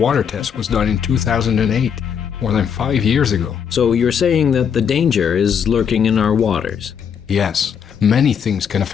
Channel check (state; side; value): quieter; right; 7.6 dB